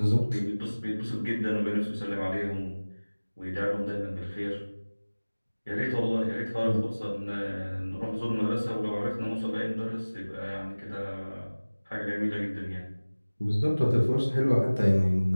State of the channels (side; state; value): both; inverted; correlation -1.00